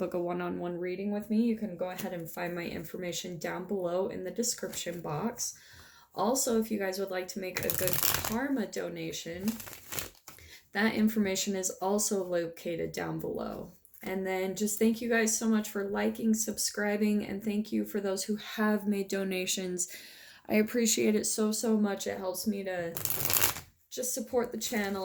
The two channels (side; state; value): both; identical; correlation 1.00